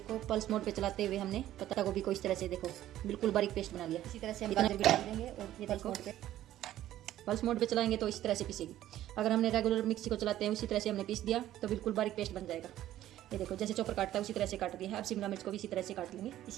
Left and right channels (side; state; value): left; quieter; 13.2 dB